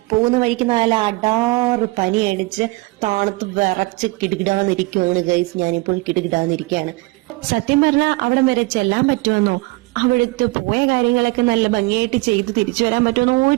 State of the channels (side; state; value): left; quieter; 23.9 dB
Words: പോകുന്ന വഴിക്ക് നാല് അടാറ് പനി അടിച്ച് താണത്ത് വിറച്ച് കിടുകിടാന്നിരിക്കുവാണ് ഗൈസ്. ഞാനിപ്പോൾ കിടുകിടാന്നിരിക്കുകയാണ്. സത്യം പറഞ്ഞാൽ അവിടം വരെ ചെല്ലാൻ പറ്റുമെന്നോ അവിടുത്തെ പോയ കാര്യങ്ങളൊക്കെ നല്ല ഭംഗിയായിട്ട് ചെയ്ത് തിരിച്ചു വരാൻ പറ്റുമെന്നോ